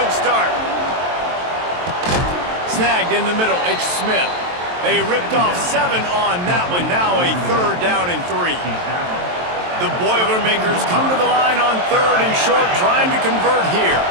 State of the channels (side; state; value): left; late; 23 ms